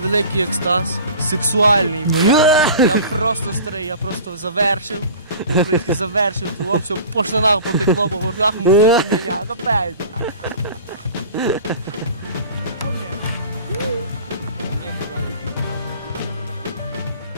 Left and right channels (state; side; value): inverted; both; correlation -0.41